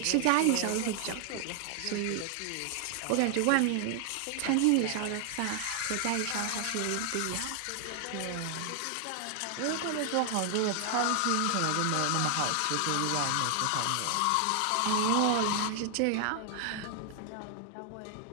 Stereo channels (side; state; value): both; different; correlation 0.00